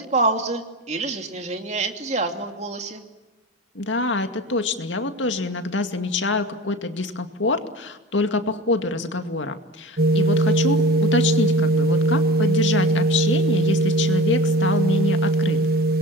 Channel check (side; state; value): both; normal; correlation 0.36